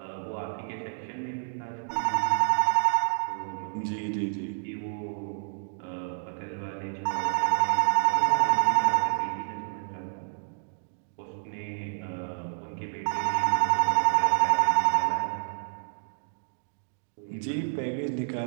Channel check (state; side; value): silent; left; digital silence